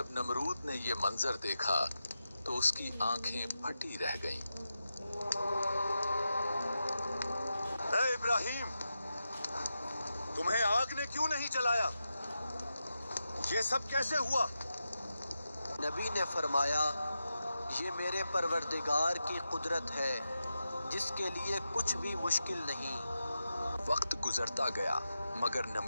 नमरूद ने ये मंजर देखा तो उसकी आंखें फटी रह गईं। ए इब्राहिम, तुम्हें आग ने क्यों नहीं जलाया? ये सब कैसे हुआ? नबी ने फरमाया, ये मेरे परवरदिगार की कुदरत है, जिसके लिए कुछ भी मुश्किल नहीं। वक्त गुजरता गया, मगर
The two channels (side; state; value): both; inverted; correlation -0.89